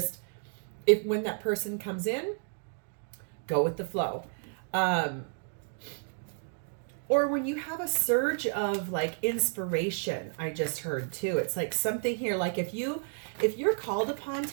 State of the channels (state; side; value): silent; left; digital silence